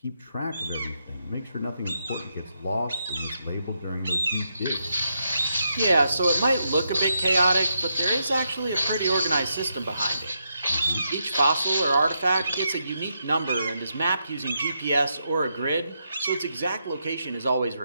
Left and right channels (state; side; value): inverted; both; correlation -0.82